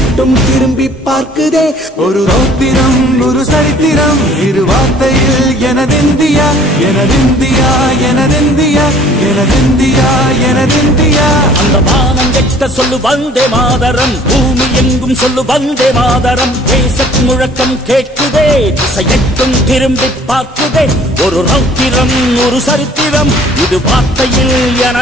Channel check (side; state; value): both; normal; correlation 0.54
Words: திரும்பி பார்க்குதே. ஒரு ரௌத்திரம் ஒரு சரித்திரம் இரு வார்த்தையில் எனதிந்தியா எனதிந்தியா எனதிந்தியா எனதிந்தியா எனதிந்தியா. அந்த வானம் எட்ட சொல்லு வந்தே மாதரம், பூமி எங்கும் சொல்லு வந்தே மாதரம். தேசத்தின் முழக்கம் கேட்குதே, திசை எட்டும் திரும்பி பார்க்குதே. ஒரு ரௌத்திரம் ஒரு சரித்திரம் இது வார்த்தையில்